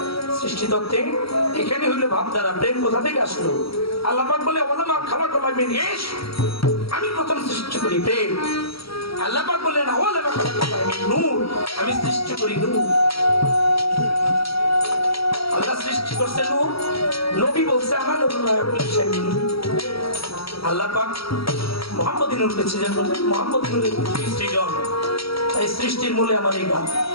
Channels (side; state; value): right; late; 0.75 ms